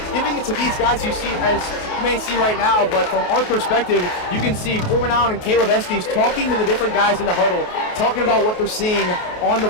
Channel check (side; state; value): right; late; 28 ms